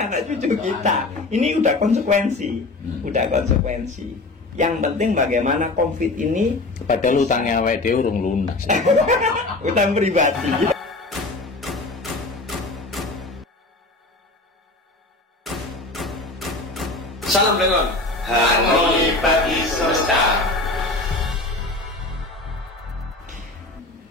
cucu kita. Ini udah konsekuensi. Yang penting bagaimana COVID ini. Padahal hutangnya awake dhewe urung lunas. Hutang pribadi. Salam dengan harmoni bagi semesta.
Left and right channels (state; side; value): quieter; right; 3.0 dB